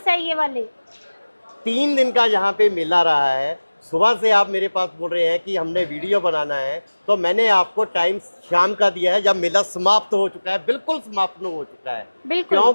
है ये वाले। 3 दिन का यहाँ पे मेला रहा है। सुबह से आप मेरे पास बोल रहे हैं कि हमने वीडियो बनाना है, तो मैंने आपको टाइम शाम का दिया है जब मेला समाप्त हो चुका है, बिल्कुल समाप्त हो चुका है,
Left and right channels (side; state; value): both; inverted; correlation -1.00